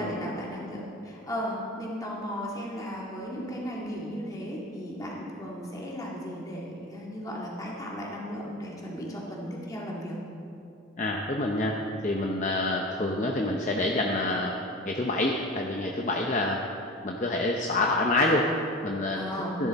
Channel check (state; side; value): normal; both; correlation 0.33